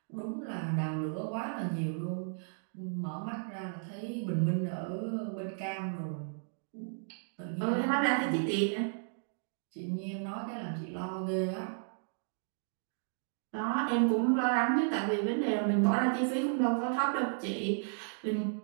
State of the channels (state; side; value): silent; left; digital silence